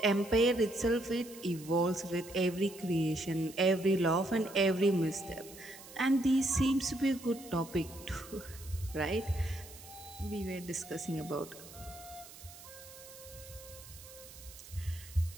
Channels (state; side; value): noise; right; hiss, 17 dB below the sound